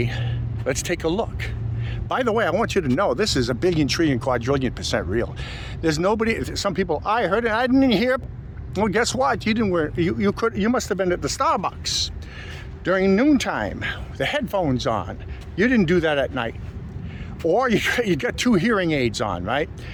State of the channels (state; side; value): identical; both; correlation 1.00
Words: let's take a look. By the way, I want you to know this is a billion, trillion, quadrillion % real. There's nobody. Some people, I heard it, I didn't hear. Well, guess what? You didn't wear. You must have been at the Starbucks during noontime, the headphones on. You didn't do that at night, or you got 2 hearing aids on, right?